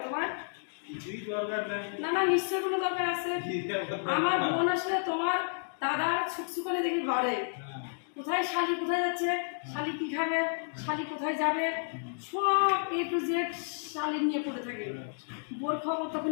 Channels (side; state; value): right; silent; digital silence